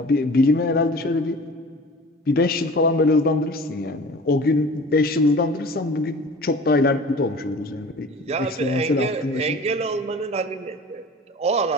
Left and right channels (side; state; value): both; normal; correlation 0.41